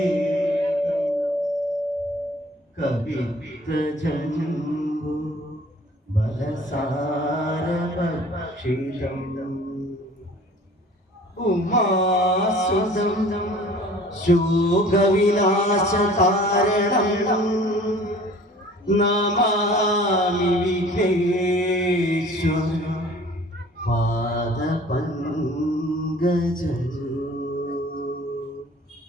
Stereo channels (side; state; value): both; normal; correlation 0.48